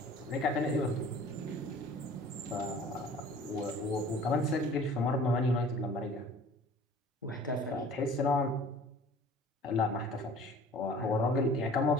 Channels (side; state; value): both; normal; correlation 0.48